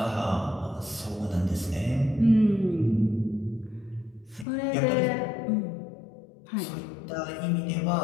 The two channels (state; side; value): drops out; right; at 4.5 s